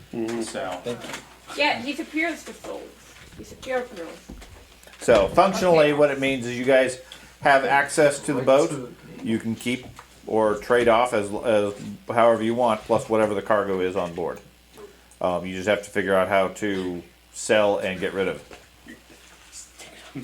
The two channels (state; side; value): identical; both; correlation 1.00